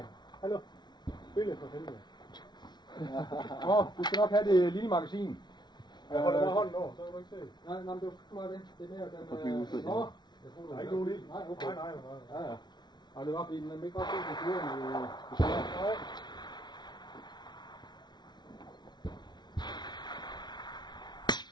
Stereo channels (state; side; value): late; right; 0.20 ms